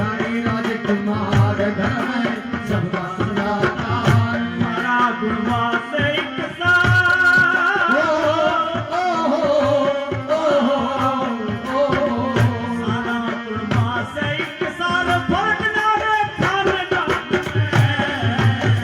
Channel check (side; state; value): both; identical; correlation 1.00